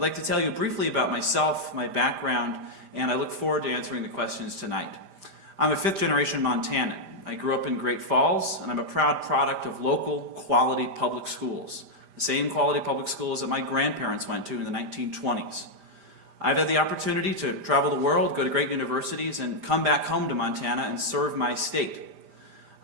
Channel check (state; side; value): late; left; 5.0 ms